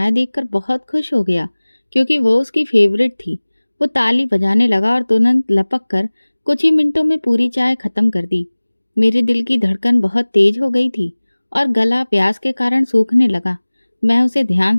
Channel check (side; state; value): both; inverted; correlation -1.00